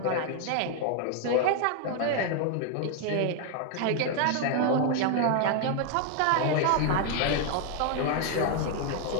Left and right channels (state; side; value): different; both; correlation 0.01